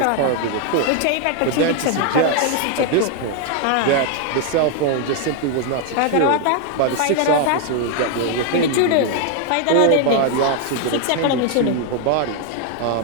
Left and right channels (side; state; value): both; different; correlation 0.00